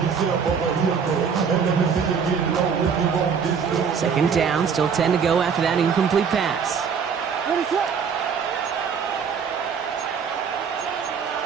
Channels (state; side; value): quieter; left; 6.5 dB